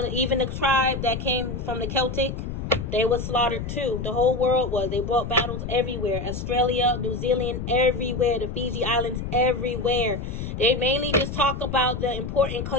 to, even the tribe that came from the Celtic, they were slaughtered too. The whole world was. They brought battles everywhere. Australia, New Zealand, everywhere. The Fiji Islands, everywhere. They mainly just talk about the important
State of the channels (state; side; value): noise; left; rumble, 5 dB below the sound